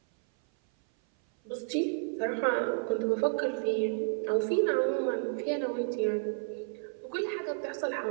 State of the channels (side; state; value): left; silent; 56 dB below the other